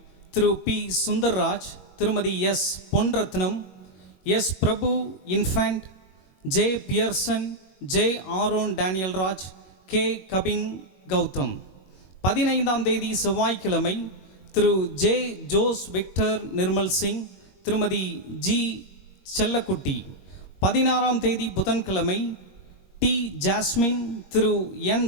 திரு பி சுந்தர்ராஜ், திருமதி S Ponrathnam, S Prabhu infant, J Pearson, J Aaron Daniel Raj, K Kabin Gautham. 15ஆம் தேதி செவ்வாய்க்கிழமை திரு J Jose Victor Nirmal Singh, திருமதி ஜி செல்லக்குட்டி. 16ஆம் தேதி புதன்கிழமை டி ஜாஸ்மின், திரு என்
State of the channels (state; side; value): late; right; 21 ms